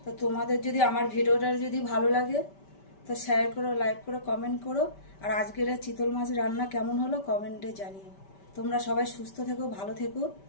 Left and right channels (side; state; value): right; late; 5.1 ms